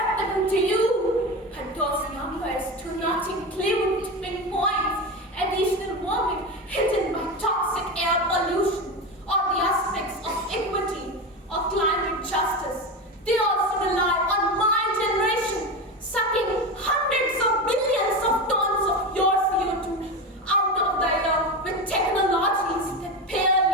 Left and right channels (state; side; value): normal; both; correlation 0.21